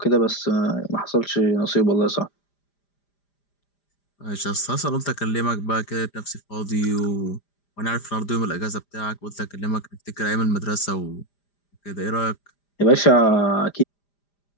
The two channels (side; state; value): right; late; 5.0 ms